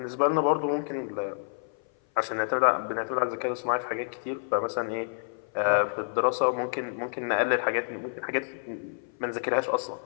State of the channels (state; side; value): silent; right; 56 dB below the other